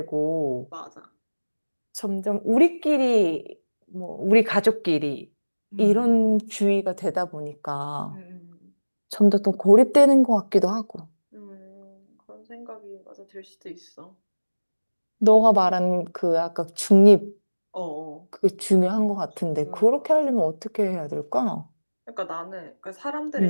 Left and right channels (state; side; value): inverted; both; correlation -1.00